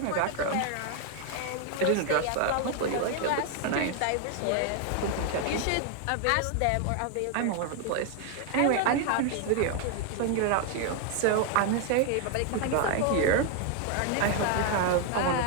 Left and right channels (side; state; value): both; different; correlation 0.01